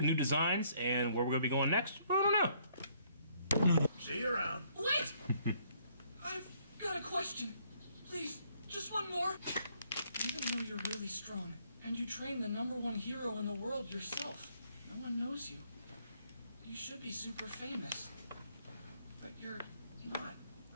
designs, and where we're going to be going next, I don't know. See you around. Wait! I've got a question. Please, just one more. Even though you're really strong, and you train the #1 hero in the world yourself, no one knows you. You should be super famous. But you're not.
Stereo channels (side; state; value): both; inverted; correlation -0.67